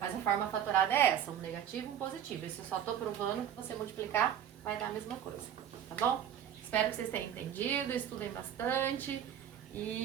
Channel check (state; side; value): quieter; left; 9.6 dB